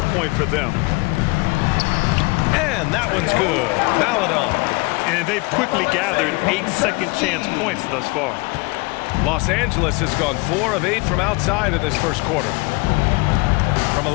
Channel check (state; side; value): quieter; right; 26.2 dB